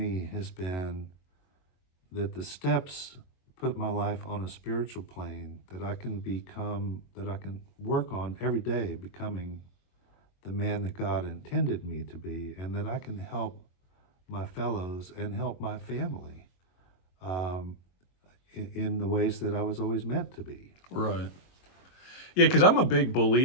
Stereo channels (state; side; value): late; right; 22 ms